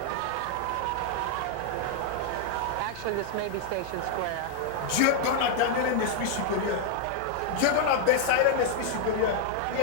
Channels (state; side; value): different; both; correlation 0.00